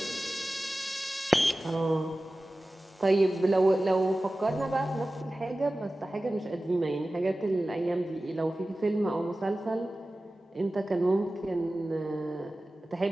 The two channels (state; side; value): normal; both; correlation 0.96